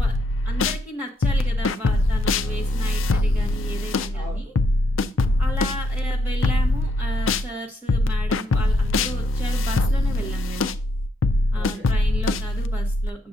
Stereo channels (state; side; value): normal; both; correlation 0.76